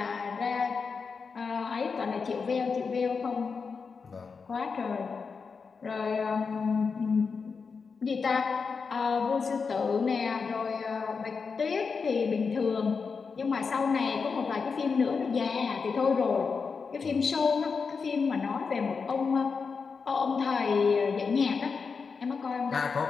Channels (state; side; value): quieter; right; 5.2 dB